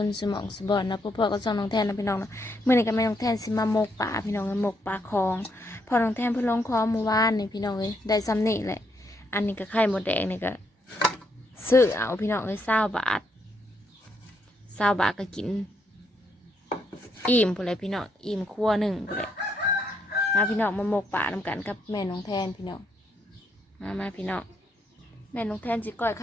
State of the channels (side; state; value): both; normal; correlation 0.76